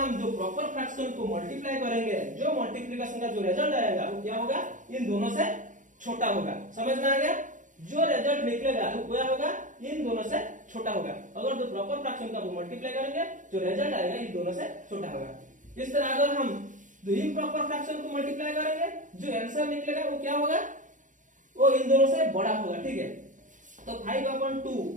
जो प्रॉपर फ्रैक्शन को मल्टीप्लाई करेंगे, जो मल्टीप्लिकेशन का जो रिजल्ट आएगा वो क्या होगा, इन दोनों से छोटा होगा। समझ में आ गया, जो रिजल्ट निकलेगा वो क्या होगा, इन दोनों से छोटा होगा। अगर जो प्रॉपर फ्रैक्शन का मल्टीप्लाई करेंगे, जो रिजल्ट आएगा इन दोनों से छोटा होगा। इस तरह अगर हम जो इम्प्रॉपर फ्रैक्शन को मल्टीप्लाई करेंगे, जो आंसर निकलेगा वो क्या होगा, वो इन दोनों से बड़ा होगा, ठीक है। तो 5/2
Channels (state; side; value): late; left; 0.37 ms